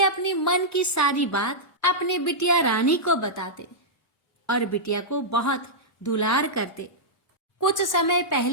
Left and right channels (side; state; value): both; normal; correlation -0.10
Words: अपनी मन की सारी बात अपने बिटिया रानी को बताते और बिटिया को बहुत दुलार करते। कुछ समय